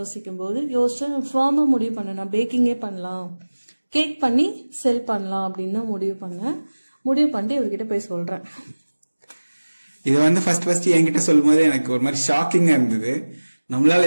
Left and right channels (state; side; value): inverted; both; correlation -1.00